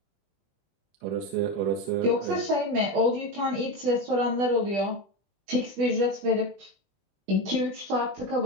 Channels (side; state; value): left; late; 20 ms